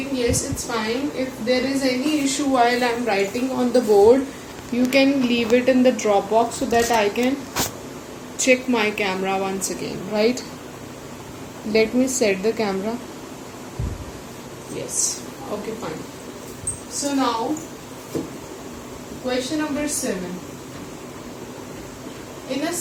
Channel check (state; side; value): identical; both; correlation 1.00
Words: Yes, it's fine. If there is any issue while I'm writing on the board, you can leave it in the Dropbox so that I can check my camera once again, right? Let me set the camera. Yes. Okay, fine. So now, question number 7. In a